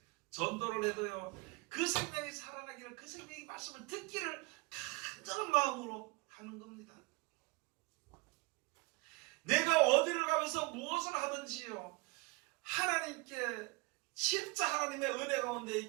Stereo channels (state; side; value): quieter; left; 26.4 dB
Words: 전도를 해도요, 그 생명이 살아나기를, 그 생명이 말씀을 듣기를 간절한 마음으로 하는 겁니다. 내가 어디를 가면서 무엇을 하든지요, 하나님께 진짜 하나님의 은혜 가운데